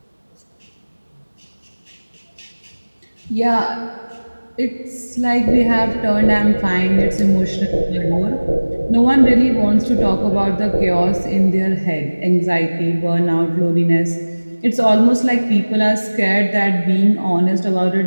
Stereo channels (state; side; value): inverted; both; correlation -1.00